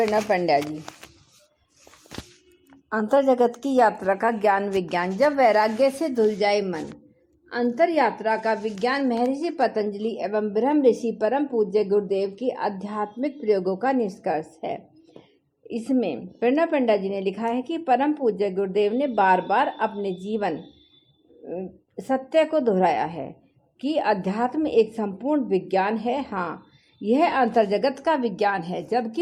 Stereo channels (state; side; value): identical; both; correlation 1.00